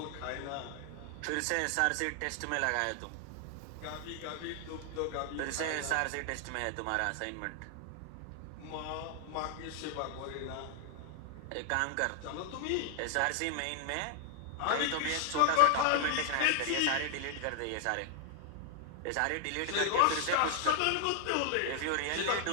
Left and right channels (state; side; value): different; both; correlation 0.00